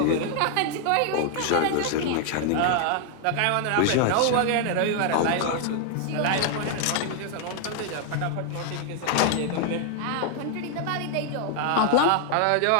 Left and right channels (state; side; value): different; both; correlation 0.00